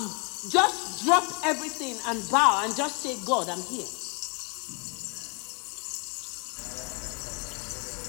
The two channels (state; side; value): quieter; right; 34.1 dB